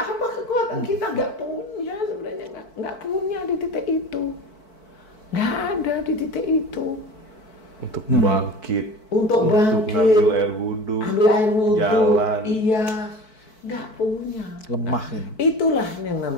kekuatan kita nggak punya sebenarnya, nggak punya di titik itu, nggak ada di titik itu. Untuk bangkit, untuk ngambil air wudhu, jalan, iya, nggak punya. Lemah Nah, itulah yang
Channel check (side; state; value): right; late; 4.6 ms